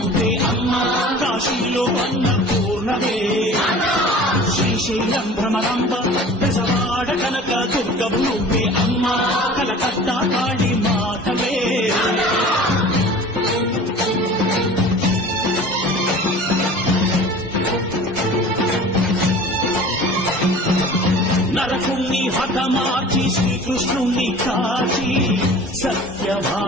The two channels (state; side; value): normal; both; correlation 0.42